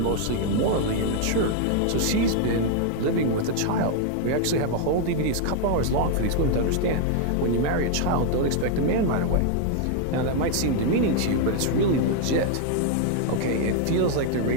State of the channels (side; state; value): both; different; correlation 0.00